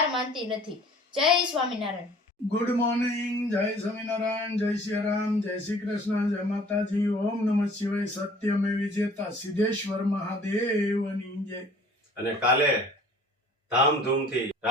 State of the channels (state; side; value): normal; both; correlation 0.50